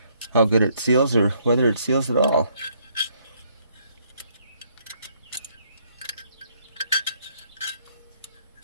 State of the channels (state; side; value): inverted; both; correlation -0.68